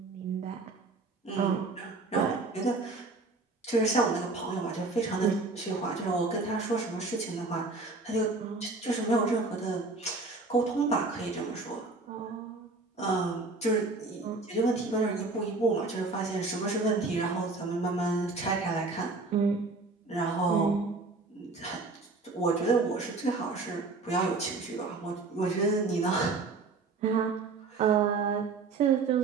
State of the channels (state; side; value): quieter; left; 3.8 dB